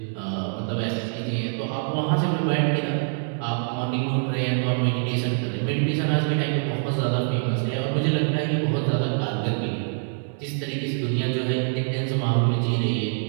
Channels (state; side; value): silent; left; 62 dB below the other